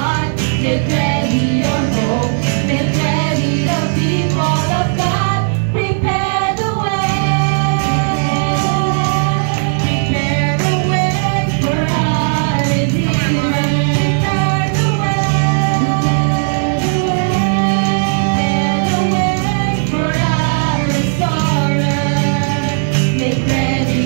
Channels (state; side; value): silent; left; digital silence